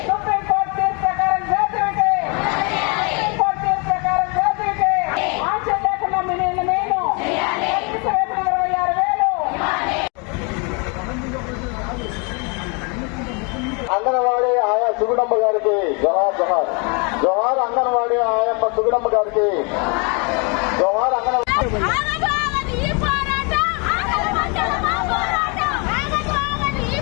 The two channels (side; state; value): right; quieter; 33.0 dB